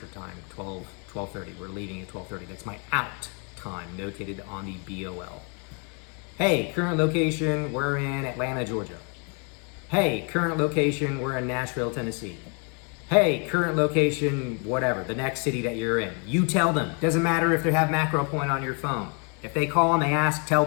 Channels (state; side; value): quieter; right; 36.5 dB